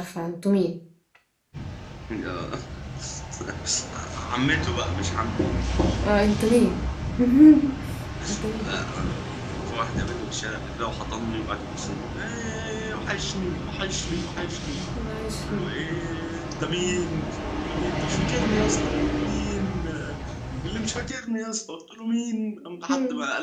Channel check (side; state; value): both; identical; correlation 1.00